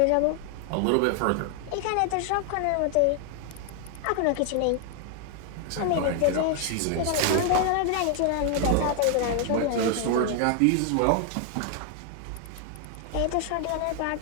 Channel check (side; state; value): both; different; correlation 0.00